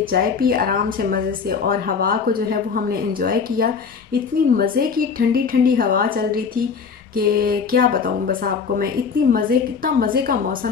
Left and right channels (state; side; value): quieter; right; 5.8 dB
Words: चाय पी आराम से मज़े से और हवा को जो है वो हमने एंजॉय किया। इतनी मज़े की ठंडी ठंडी हवा चल रही थी कि क्या बताऊँ बस आपको मैं। इतना मज़े का